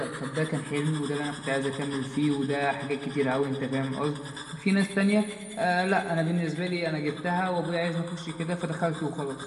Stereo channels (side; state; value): both; identical; correlation 1.00